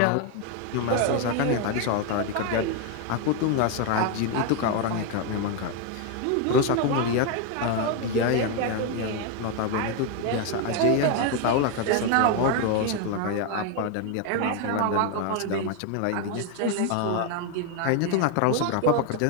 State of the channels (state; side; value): different; both; correlation 0.01